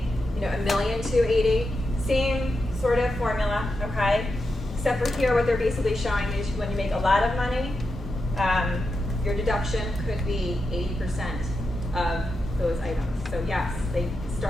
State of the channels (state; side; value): normal; both; correlation 0.87